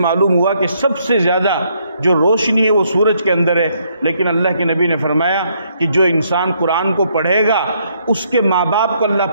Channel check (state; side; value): inverted; both; correlation -0.71